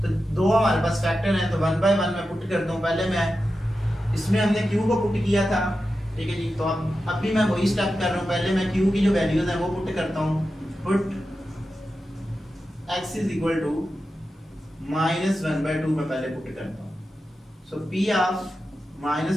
तो दो हमारे पास फैक्टर हैं, तो 1/1 मैं पुट करता हूँ। पहले मैं इसमें हमने Q को पुट किया था, ठीक है जी, तो अब भी मैं वही स्टेप कर रहा हूँ। पहले मैं Q की जो वैल्यूज हैं वो पुट करता हूँ, put x is equal to -1/2 मैं पहले पुट करता हूँ। So P of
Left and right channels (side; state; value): both; normal; correlation 0.91